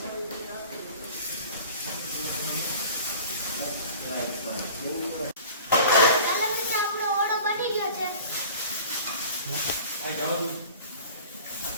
ચાલો મિત્રો, આપણો ઓળો બની ગયો છે.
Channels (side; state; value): both; inverted; correlation -0.43